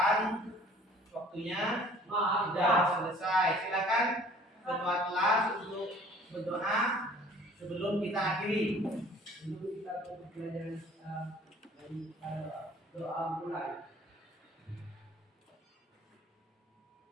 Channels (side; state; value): both; normal; correlation 0.51